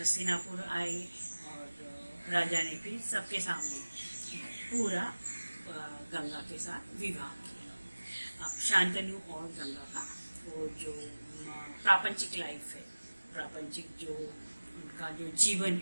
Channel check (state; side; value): inverted; both; correlation -1.00